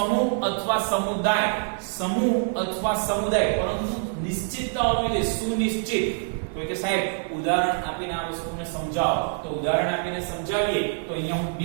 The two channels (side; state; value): left; silent; digital silence